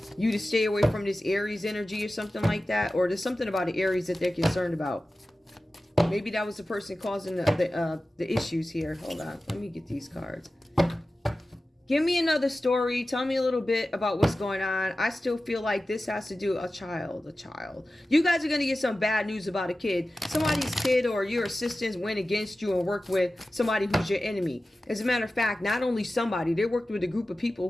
you to stay away from this Aries energy or something like that. Or there's something about the Aries that they're concerned about. Maybe that was the person causing the issues here. Hold on. Let me get these cards. Give me another story. Tell me a little bit about what's going on. I still feel like this has to do a child. You guys are going to get some bad news about a kid. Somebody's kid or your assistants went against you and worked with somebody who's your enemy. As a matter of fact, not only somebody, they worked with a group of people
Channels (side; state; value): both; normal; correlation 0.95